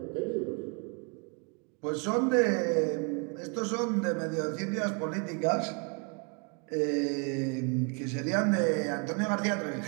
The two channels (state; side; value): quieter; left; 35.8 dB